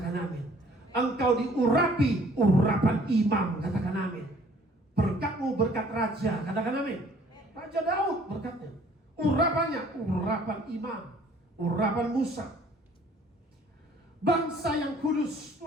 amin. Engkau diurapi urapan imam. Katakan amin. Berkatmu berkat raja. Katakan amin. Raja Daud berkatnya. Urapannya, urapan imam, urapan Musa. Bangsa yang kudus,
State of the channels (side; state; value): both; normal; correlation 0.57